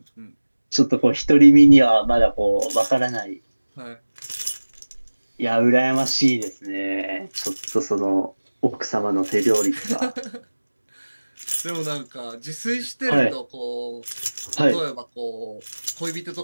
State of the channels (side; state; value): both; inverted; correlation -1.00